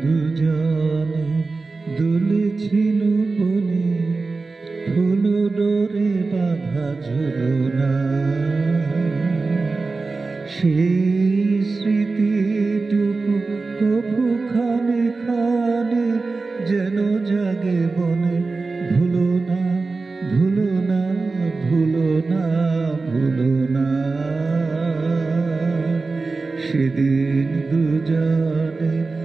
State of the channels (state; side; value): quieter; left; 3.8 dB